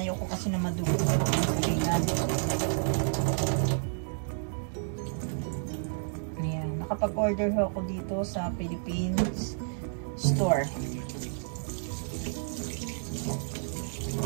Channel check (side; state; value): left; silent; digital silence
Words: kasi na madugo ang kulingan. Ayan. Nakapag-order ako dito sa Philippines store.